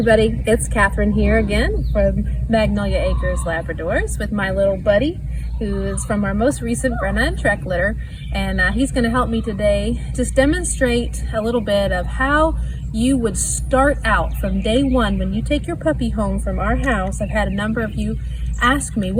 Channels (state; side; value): identical; both; correlation 1.00